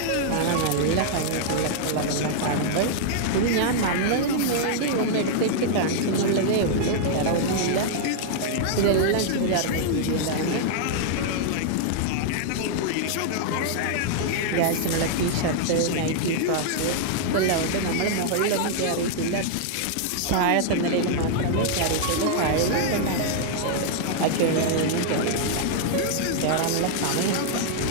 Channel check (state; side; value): different; both; correlation -0.01